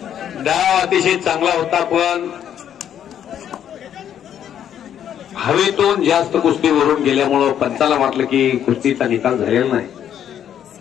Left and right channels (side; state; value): right; quieter; 9.7 dB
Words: डाव अतिशय चांगला होता पण हवेतून जास्त कुस्ती वरून गेल्यामुळं पंचाला वाटलं की कुस्तीचा निकाल झालेला नाही.